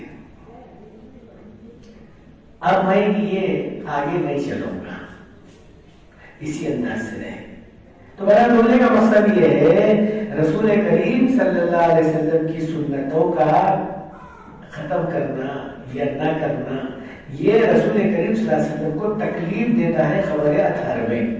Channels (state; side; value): identical; both; correlation 1.00